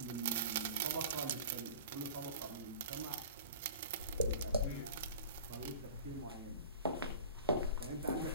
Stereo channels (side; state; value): both; inverted; correlation -0.40